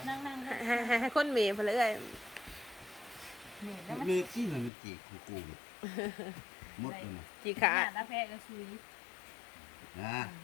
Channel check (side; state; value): right; drops out; at 4.7 s